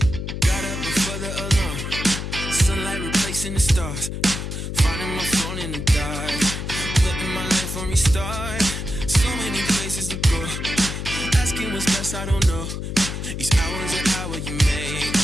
the stars. Finding my phone in the dark. Putting my life on restart. So many places to go. Asking what's best, I don't know. Each hour's an hour you make.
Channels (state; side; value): noise; left; hum, 5 dB below the sound